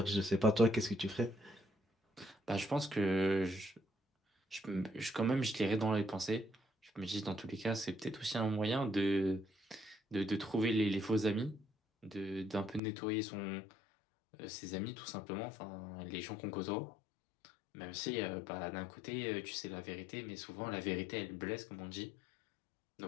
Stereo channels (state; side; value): drops out; right; at 12.8 s